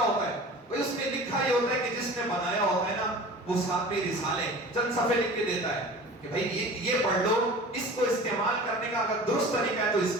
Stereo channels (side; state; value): both; normal; correlation 0.39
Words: ہے بھئی, اس میں لکھا یہ ہوتا ہے کہ جس نے بنایا ہوتا ہے نا وہ ساتھ میں رسالے چند صفحے لکھ کے دیتا ہے کہ بھئی یہ پڑھ لو, اس کو استعمال کرنے کا اگر درست طریقہ ہے تو اس